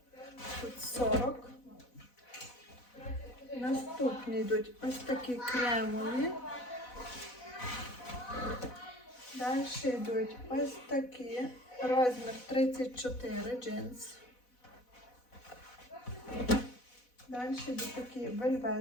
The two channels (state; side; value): late; right; 4.1 ms